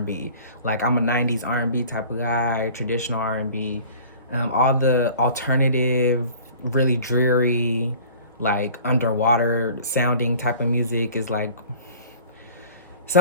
Like, I'm a 90s R&B type of guy, traditional R&B. All the alternative, really dreary, like underwater sounding type of music is like,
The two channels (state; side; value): inverted; both; correlation -0.46